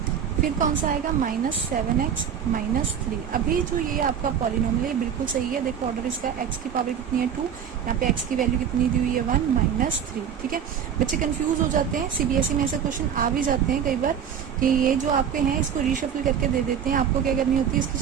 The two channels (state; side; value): quieter; left; 8.2 dB